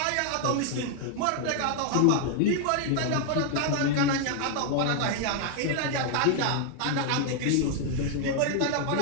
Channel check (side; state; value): both; different; correlation 0.00